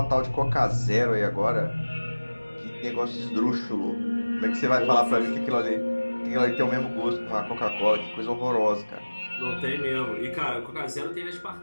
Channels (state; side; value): inverted; both; correlation -1.00